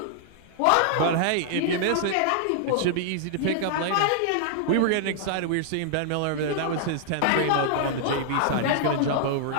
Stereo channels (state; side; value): different; both; correlation -0.01